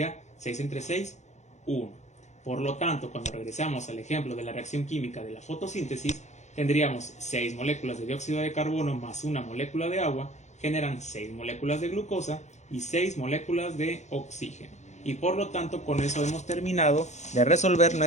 6 entre 6, 1. Por lo tanto, cuando regresamos al ejemplo de la reacción química de la fotosíntesis, tendríamos 6 moléculas de dióxido de carbono más una molécula de agua, generan 6 moléculas de glucosa y 6 moléculas de oxígeno. Y por lo tanto, con eso hemos terminado de resolver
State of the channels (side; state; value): right; late; 0.33 ms